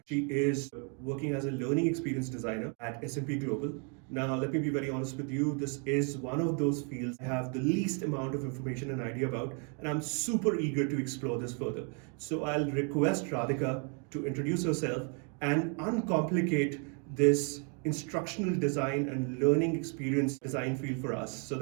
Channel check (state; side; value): quieter; left; 38.3 dB